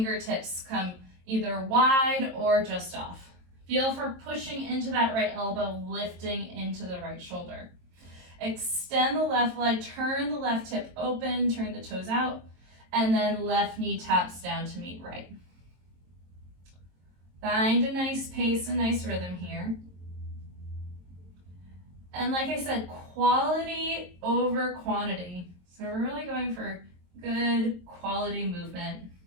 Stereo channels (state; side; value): late; left; 22 ms